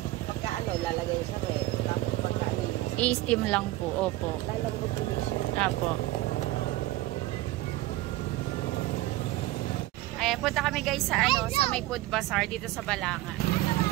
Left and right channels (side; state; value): left; quieter; 17.2 dB